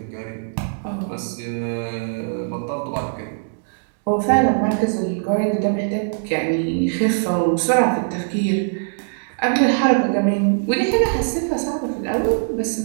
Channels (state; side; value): silent; left; digital silence